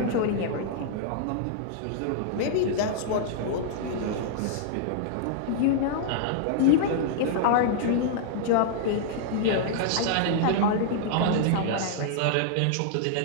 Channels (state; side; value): different; both; correlation -0.01